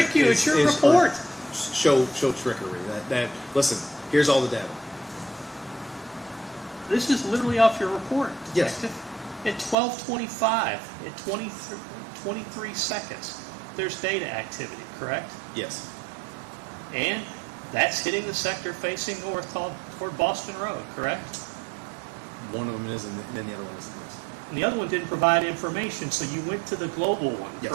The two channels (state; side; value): drops out; left; at 9.8 s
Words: you. It's your report. Show trickery. That listen. Here's all the data. This is literally off your report. Yes. At 12:25, at 23 seconds, there's data activity, correct? Yes. And that's hitting the sector facing north toward Boston Road, correct? One of them is, and then the other one isn't. And the other one didn't provide information, so you went to the global one, Yes.